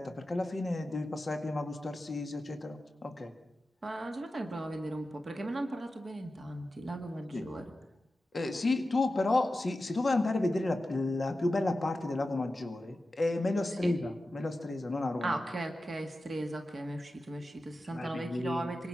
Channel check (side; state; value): both; normal; correlation 0.93